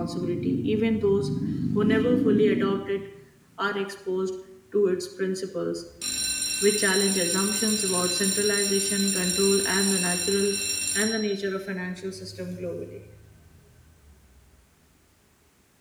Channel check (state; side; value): identical; both; correlation 1.00